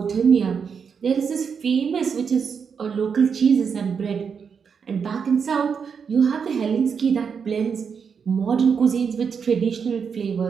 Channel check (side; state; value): left; quieter; 6.4 dB